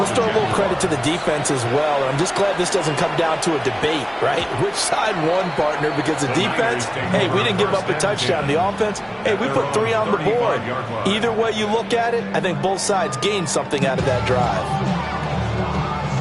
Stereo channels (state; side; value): identical; both; correlation 1.00